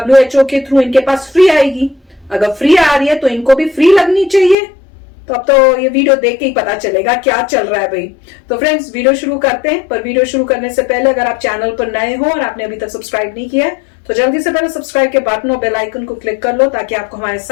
के थ्रू इनके पास फ्री आएगी। अगर फ्री आ रही है तो इनको भी फ्री लगनी चाहिए। तो अब तो ये वीडियो देख के ही पता चलेगा क्या चल रहा है भाई। तो फ्रेंड्स, वीडियो शुरू करते हैं। पर वीडियो शुरू करने से पहले अगर आप चैनल पर नए हो और आपने अभी तक सब्सक्राइब नहीं किया है तो जल्दी से पहले सब्सक्राइब के बटन और बेल आइकन को क्लिक कर लो ताकि आपको हमारे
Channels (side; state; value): right; drops out; at 4.5 s